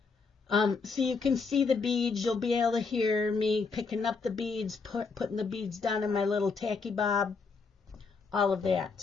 so you can see the beads. You'll be able to hear me picking up the beads, putting the beads down in my little tacky bob, all of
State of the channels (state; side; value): quieter; right; 4.7 dB